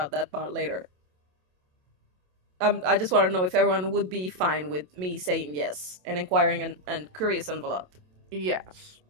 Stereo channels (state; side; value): late; left; 27 ms